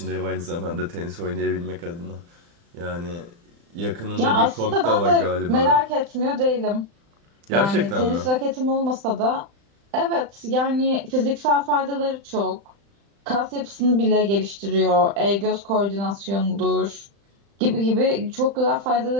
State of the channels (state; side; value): late; left; 35 ms